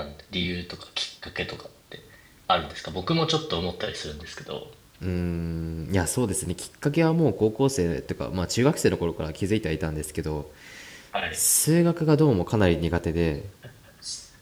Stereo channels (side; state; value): both; identical; correlation 1.00